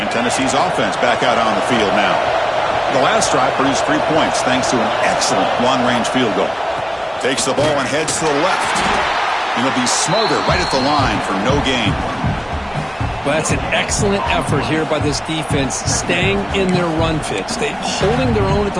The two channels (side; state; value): both; identical; correlation 1.00